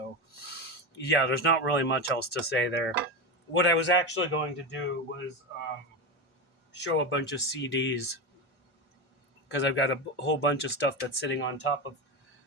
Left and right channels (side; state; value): both; normal; correlation 0.17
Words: yeah, there's not really much else to say there. What I was actually going to do was show a bunch of CDs because I've got a whole bunch of stuff that's sitting on top of